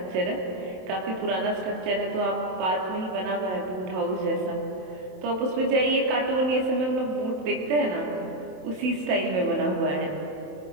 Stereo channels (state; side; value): late; left; 27 ms